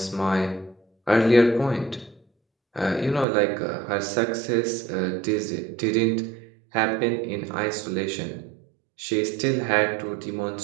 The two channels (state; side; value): drops out; left; at 3.2 s